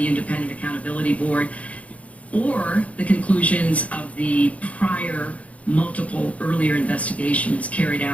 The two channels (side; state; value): right; late; 0.066 ms